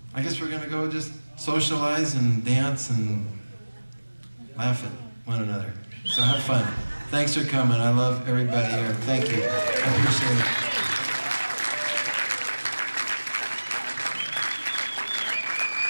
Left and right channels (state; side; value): inverted; both; correlation -1.00